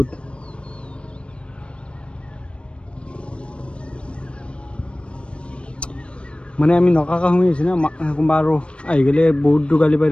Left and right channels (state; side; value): late; right; 0.058 ms